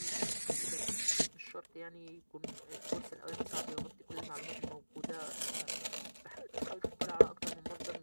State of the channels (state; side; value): inverted; both; correlation -1.00